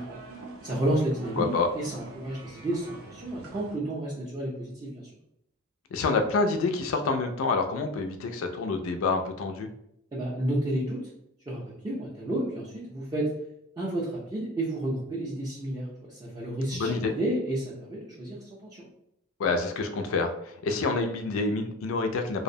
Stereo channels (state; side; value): normal; both; correlation 0.34